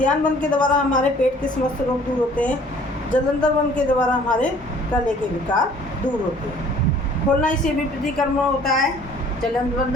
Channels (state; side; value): normal; both; correlation 0.54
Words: बंद के द्वारा हमारे पेट के समस्त रोग दूर होते हैं। जलंधर बंद के द्वारा हमारे गले के विकार दूर होते हैं। खोलना इसे भी प्रतिक्रमण होता है। जलंधर बंद,